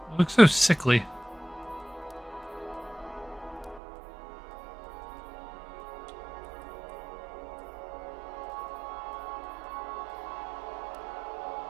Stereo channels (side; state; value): left; drops out; at 3.8 s